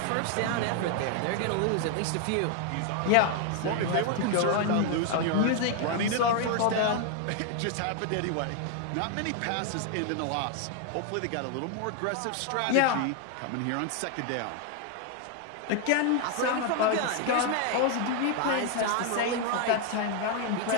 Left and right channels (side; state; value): both; different; correlation 0.01